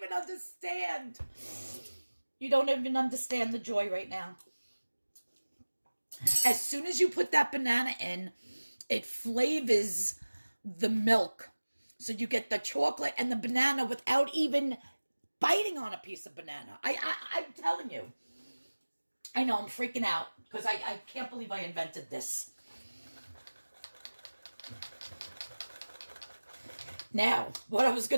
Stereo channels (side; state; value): both; inverted; correlation -1.00